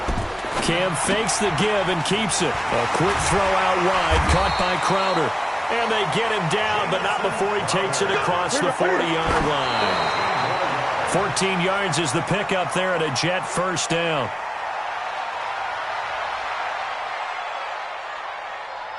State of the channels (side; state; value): both; identical; correlation 1.00